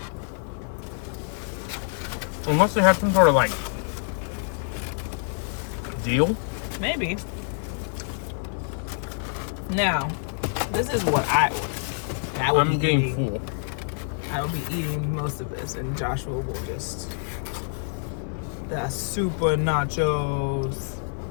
Unless they have some sort of like deal. Maybe. Now, this is what I ordered. And I will I'm be getting eating, full. I will be eating most of this, and Joshua will just the super nachos.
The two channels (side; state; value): right; silent; digital silence